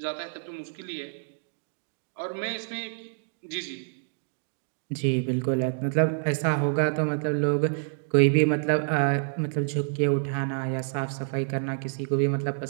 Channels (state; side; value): silent; left; digital silence